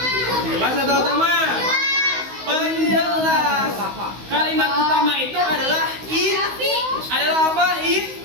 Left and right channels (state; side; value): late; left; 16 ms